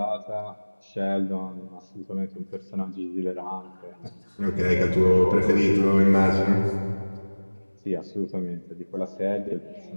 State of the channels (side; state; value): both; inverted; correlation -1.00